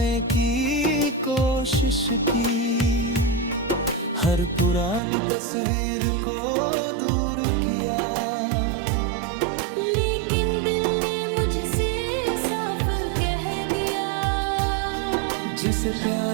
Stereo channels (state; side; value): drops out; left; at 5.0 s